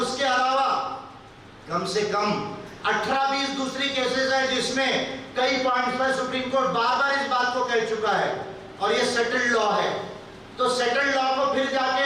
उसके अलावा कम से कम 18-20 दूसरी केसेस है जिसमें कई पॉइंट्स पर सुप्रीम कोर्ट बार-बार इस बात को कह चुका है, और ये सेटल्ड लॉ है। तो सेटल्ड लॉ को फिर जाके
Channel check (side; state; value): both; identical; correlation 1.00